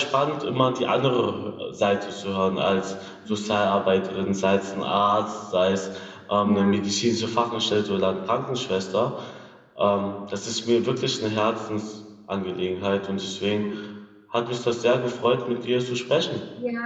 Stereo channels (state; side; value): identical; both; correlation 1.00